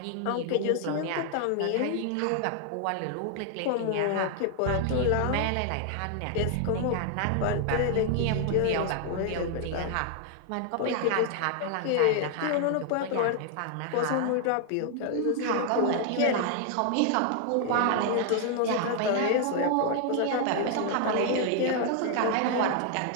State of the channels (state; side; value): different; both; correlation 0.00